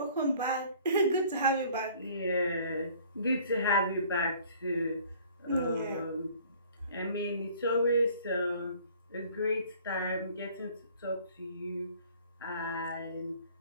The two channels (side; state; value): both; inverted; correlation -0.54